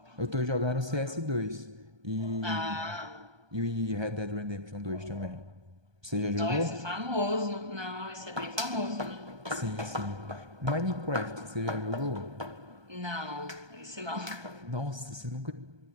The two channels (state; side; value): late; left; 1.2 ms